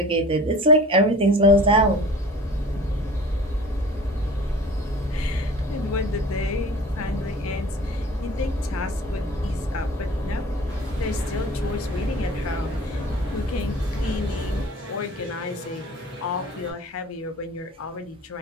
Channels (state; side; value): normal; both; correlation 0.43